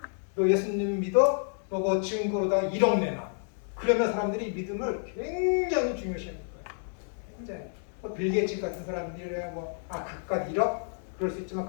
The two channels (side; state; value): right; silent; 58 dB below the other